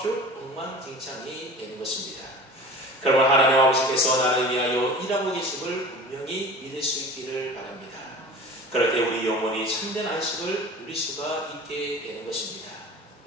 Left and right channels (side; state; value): both; normal; correlation 0.38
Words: 엉망진창이 되는 것입니다. 그러면 하나님 아버지께서 나를 위하여 일하고 계심을 분명히 믿을 수 있기를 바랍니다. 그럴 때 우리 영혼이 참된 안식을 누릴 수가 있게 되는 것입니다.